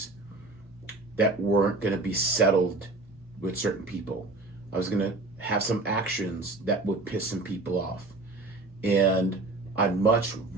that weren't going to be settled with certain people. I was going to have some actions that would piss some people off. And I'd much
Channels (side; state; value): left; quieter; 3.2 dB